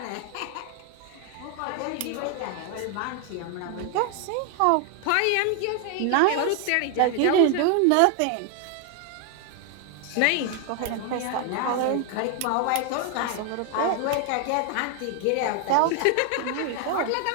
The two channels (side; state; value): both; different; correlation 0.01